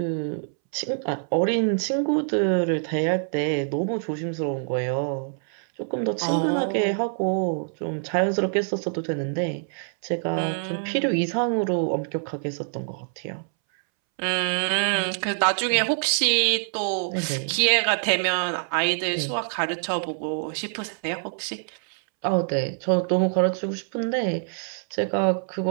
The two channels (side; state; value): left; silent; 62 dB below the other